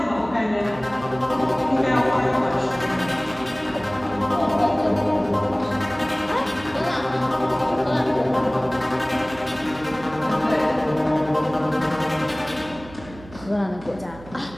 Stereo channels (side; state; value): right; noise; hum, 18 dB below the sound